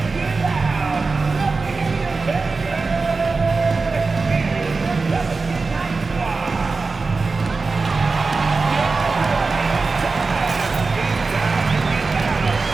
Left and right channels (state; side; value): quieter; left; 4.1 dB